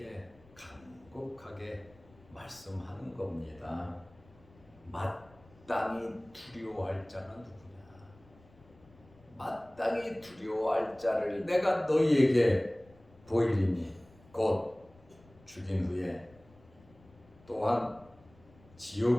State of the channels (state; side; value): noise; left; rumble, 26 dB below the sound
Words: 간곡하게 말씀하는 겁니다. 마땅히 두려워할 자는 누구냐? 마땅히 두려워할 자를 내가 너희에게 보이리니 곧 죽인 후에 또한